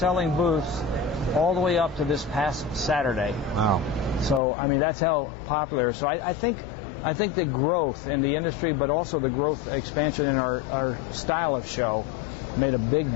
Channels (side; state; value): right; drops out; at 4.4 s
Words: booths all the way up to this past Saturday. Wow. So, I mean, that's how popular. So I think the growth in the industry, but also the growth expansion in our style of show made a big